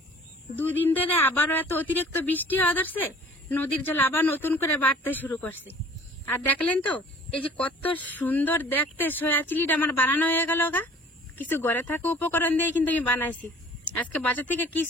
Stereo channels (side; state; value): both; normal; correlation 0.50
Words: দুদিন ধরে আবারও এত অতিরিক্ত বৃষ্টি হওয়া ধরছে, নদীর জল আবার নতুন করে বাড়তে শুরু করছে। আর দেখলেন তো এই যে কত সুন্দর দেখতে সয়া চিলিটা আমার বানানো হয়ে গেল গা। কিছু ঘরে থাকা উপকরণ দিয়ে কিন্তু আমি বানাইছি, আজকে বাজার থেকে